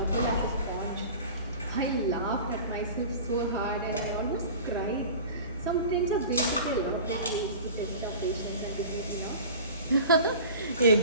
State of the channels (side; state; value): both; inverted; correlation -0.38